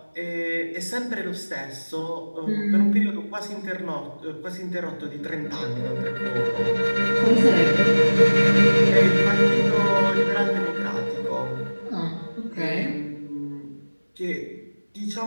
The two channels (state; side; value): inverted; both; correlation -1.00